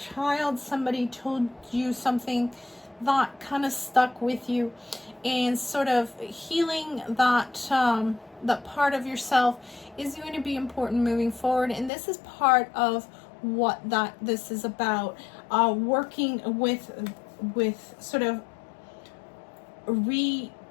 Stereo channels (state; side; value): drops out; right; at 11.9 s